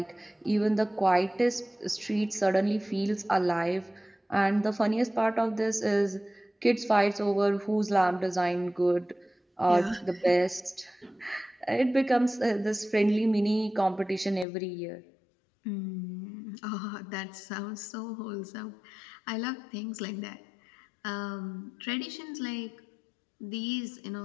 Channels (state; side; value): drops out; right; at 14.5 s